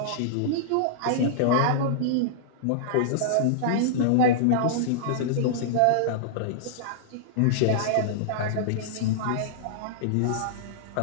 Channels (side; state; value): both; different; correlation -0.02